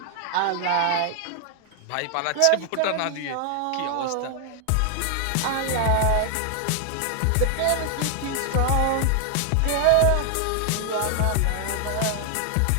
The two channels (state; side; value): different; both; correlation 0.00